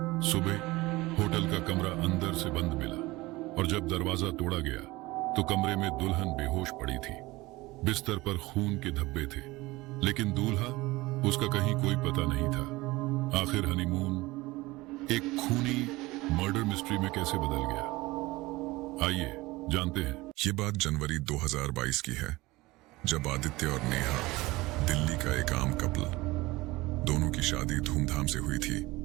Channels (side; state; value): left; quieter; 20.6 dB